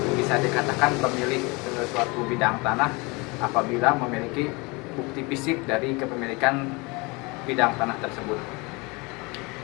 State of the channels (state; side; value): quieter; right; 26.9 dB